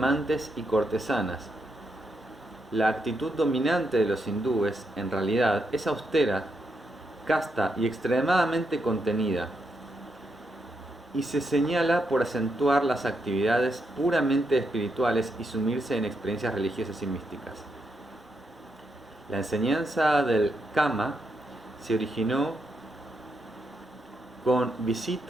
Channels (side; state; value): both; normal; correlation 0.81